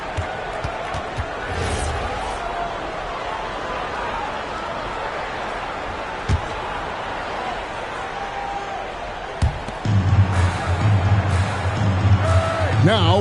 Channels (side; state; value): both; identical; correlation 1.00